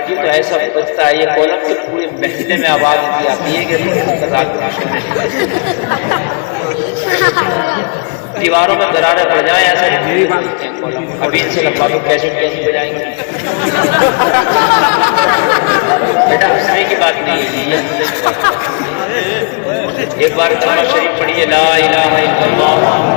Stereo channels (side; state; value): right; quieter; 37.0 dB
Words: تو ایسا بجتا ہے، یہ کولم تو پورے محلے میں آواز دی آتی ہے کہ رات دیواروں میں دراریں پڑ جائیں، ایسا ابھی ان سے لگوا کے کیسے بجائیں گے۔ بیٹا ہنسنے کی بات نہیں ہے، یہ ہنسنے کی بات نہیں۔ ایک بار کلمہ شریف پڑھیے، لا الہ الا اللہ